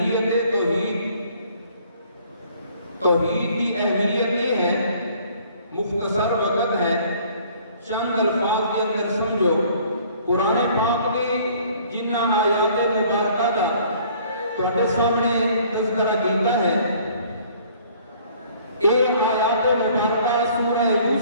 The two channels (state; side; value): inverted; both; correlation -0.57